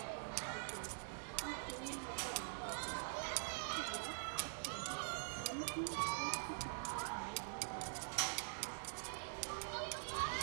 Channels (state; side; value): silent; left; digital silence